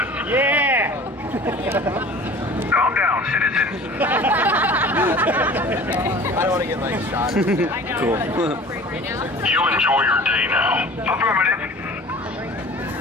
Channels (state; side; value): normal; both; correlation 0.43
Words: Yeah! Calm down, citizen. I don't want to get like shot. Cool. You enjoy your day now. Affirmative.